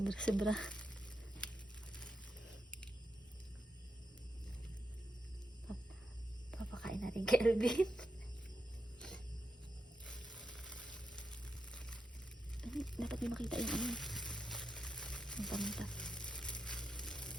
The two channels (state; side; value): normal; both; correlation 0.86